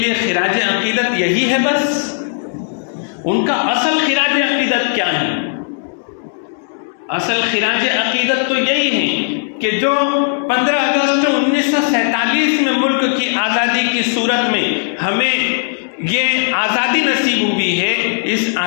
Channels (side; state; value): right; silent; digital silence